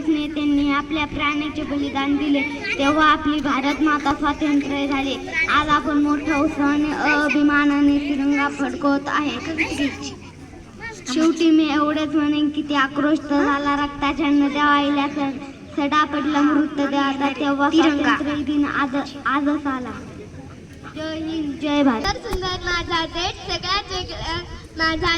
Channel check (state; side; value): identical; both; correlation 1.00